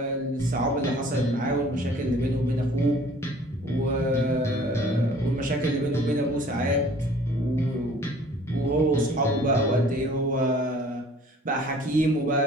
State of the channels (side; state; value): both; normal; correlation 0.52